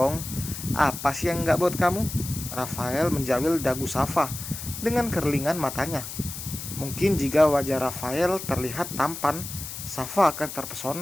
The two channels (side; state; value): left; noise; hiss, 9 dB below the sound